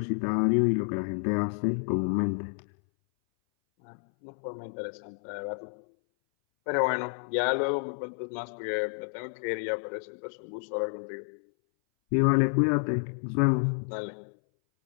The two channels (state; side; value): silent; right; 58 dB below the other